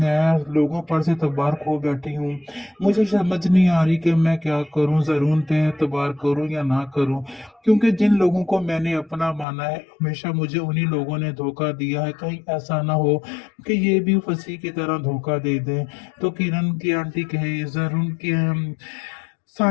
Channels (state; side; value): drops out; right; at 9.5 s